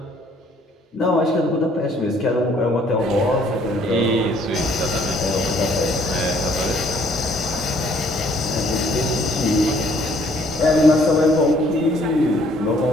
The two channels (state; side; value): normal; both; correlation 0.62